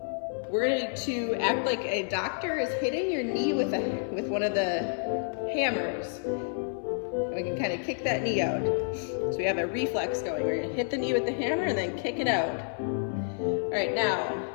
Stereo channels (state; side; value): silent; right; 58 dB below the other